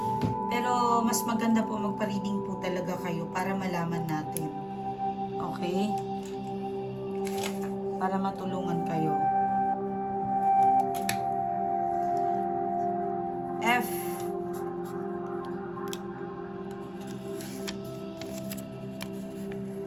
Pero mas maganda po magpa-reading po talaga kayo para malaman natin. Okay? Para matulungan kayo. F.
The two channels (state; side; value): noise; left; rumble, 29 dB below the sound